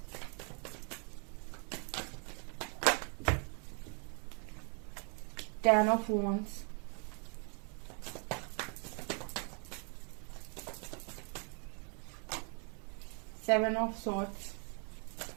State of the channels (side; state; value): left; quieter; 38.4 dB